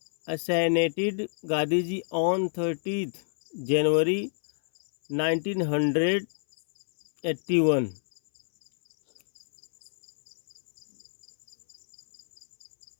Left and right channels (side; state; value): right; silent; 59 dB below the other